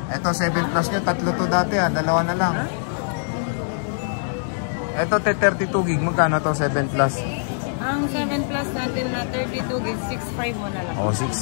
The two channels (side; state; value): right; silent; 63 dB below the other